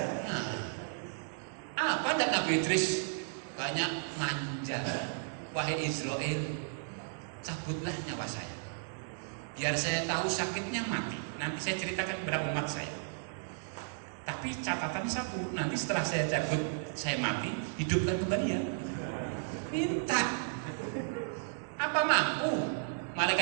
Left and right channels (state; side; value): silent; left; digital silence